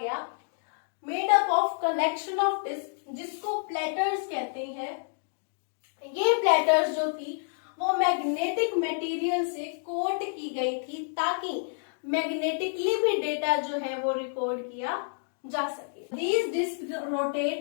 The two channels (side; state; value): right; silent; digital silence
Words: made up of collection of disk, जिसको प्लेटर्स कहते हैं। ये प्लेटर्स जो थी वो मैग्नेटिक मटेरियल से कोट की गई थी ताकि मैग्नेटिकली भी डेटा जो है वो रिकॉर्ड किया जा सके। These discs rotate